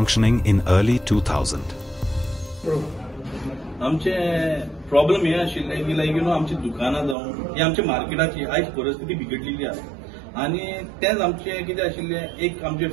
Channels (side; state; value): left; drops out; at 7.2 s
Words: in early 2000. आमचे प्रॉब्लेम हे आशिल्ले की आमची दुकानां जावं ही आमच्या मार्केटाची आयज परिस्थिती बिगडलेली आसा आनी तेच आमचे कितें आशिल्ले एक